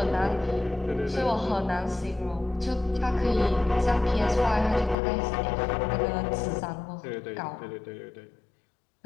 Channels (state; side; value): drops out; right; at 5.0 s